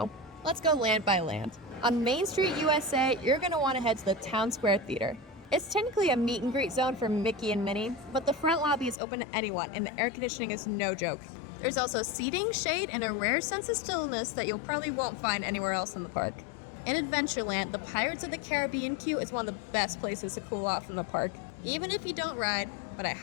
Let's go land by land. On Main Street, USA, you're going to want to head to the Town Square Theater. It's technically a meet and greet zone for Mickey and Minnie, but the front lobby is open to anyone and the air conditioning is no joke. There's also seating, shade, and a rare sense of stillness that you'll probably won't find anywhere else in the park. In Adventureland, the Pirates of the Caribbean queue is one of the best places to cool off in the park, even if you don't ride, but I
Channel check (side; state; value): right; drops out; at 9.0 s